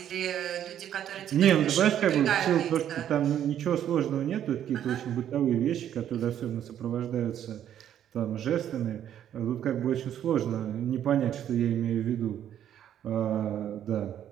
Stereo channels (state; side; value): quieter; left; 10.4 dB